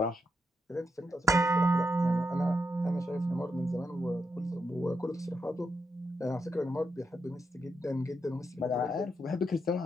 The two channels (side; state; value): both; normal; correlation 0.83